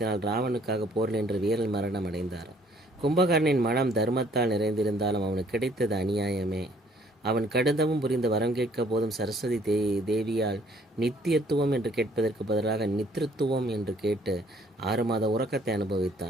ராவனுக்காக போரில் என்று வீரல் மரணம் அடைந்தார். கும்பகர்ணனின் மனம் தர்மத்தால் நிறைந்திருந்தாலும் அவனுக்கு கிடைத்தது அநியாயமே. அவன் கடுந்தவும் புரிந்து வரம் கேட்க போதும் சரஸ்வதி தேவியால் நித்தியத்துவம் என்று கேட்பதற்கு பதிலாக நித்திருத்துவம் என்று கேட்டு 6 மாத உறக்கத்தை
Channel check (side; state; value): both; normal; correlation 0.61